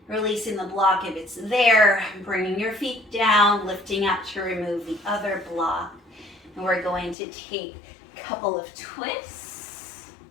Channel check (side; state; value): right; drops out; at 7.2 s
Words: Releasing the block if it's there, bringing your feet down, lifting up to remove the other block. And we're going to take a couple of twists.